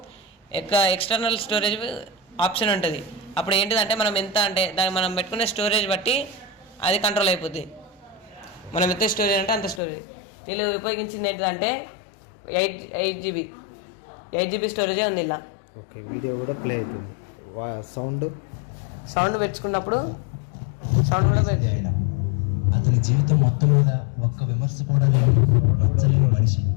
ఎక్స్టర్నల్ స్టోరేజ్ ఆప్షన్ ఉంటుంది. అప్పుడు ఏంటిదంటే మనం ఎంత అంటే దాన్ని మనం పెట్టుకునే స్టోరేజ్ బట్టి అది కంట్రోల్ అయిపోద్ది. మనం ఎంత స్టోరేజ్ అంటే అంత స్టోరేజ్. వీళ్ళు ఉపయోగించింది ఏంటంటే 8 GB స్టోరేజే ఉంది ఇలా. ఓకే, వీడియో కూడా ప్లే అవుతుంది. సౌండ్ పెంచుకున్నప్పుడు సౌండ్ కూడా పెంచాడు. అతని జీవితం మొత్తం మీద ఒక్క విమర్శ కూడా లేని మనిషి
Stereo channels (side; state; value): right; drops out; at 9.8 s